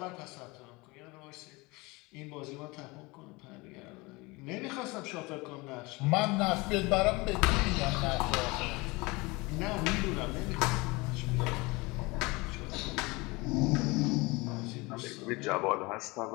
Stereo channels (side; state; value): right; quieter; 24.4 dB